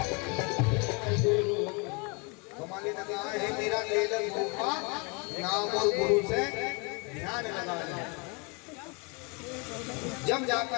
कमाली लगा है, मेरा ले गुरु का नाम और गुरु से ध्यान लगा है। जब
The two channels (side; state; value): right; quieter; 31.7 dB